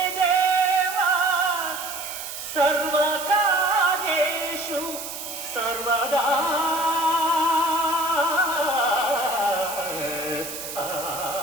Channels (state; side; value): noise; right; hiss, 9 dB below the sound